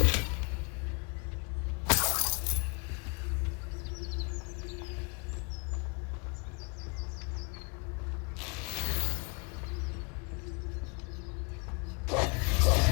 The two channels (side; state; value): right; quieter; 32.7 dB